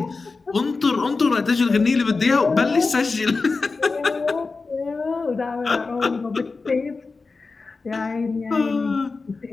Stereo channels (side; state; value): right; quieter; 4.1 dB